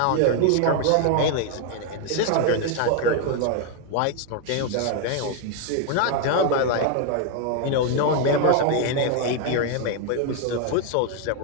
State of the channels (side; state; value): both; different; correlation 0.01